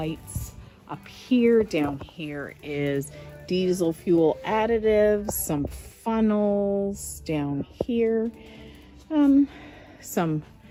Up here, down here is diesel fuel additives, some funnels down here, some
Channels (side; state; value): both; identical; correlation 1.00